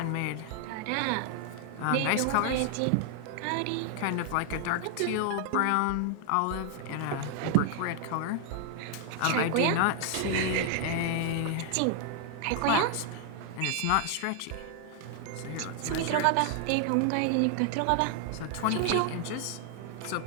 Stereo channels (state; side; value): different; both; correlation 0.00